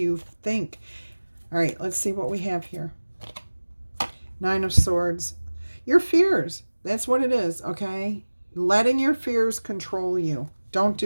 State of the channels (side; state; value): both; inverted; correlation -1.00